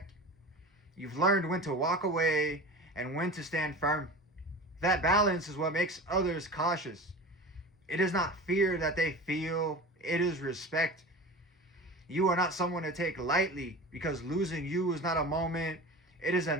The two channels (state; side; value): normal; both; correlation 0.33